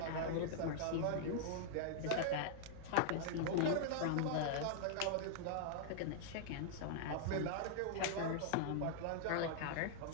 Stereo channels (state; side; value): different; both; correlation -0.01